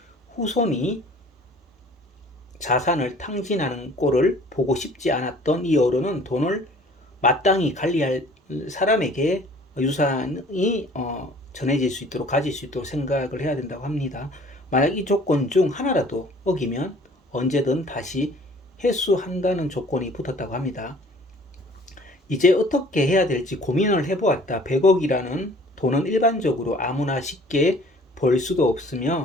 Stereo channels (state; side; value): normal; both; correlation 0.52